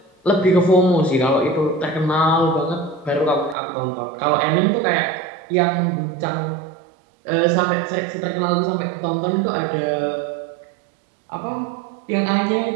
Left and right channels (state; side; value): drops out; left; at 3.6 s